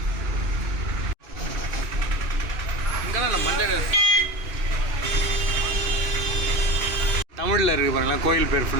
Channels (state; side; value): late; left; 2.6 ms